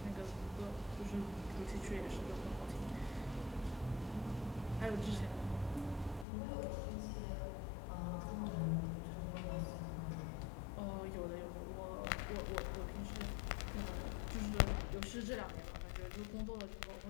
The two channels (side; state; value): right; drops out; at 6.2 s